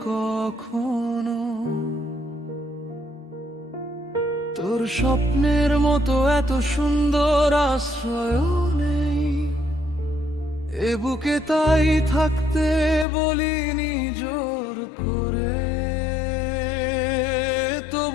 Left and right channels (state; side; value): drops out; right; at 13.1 s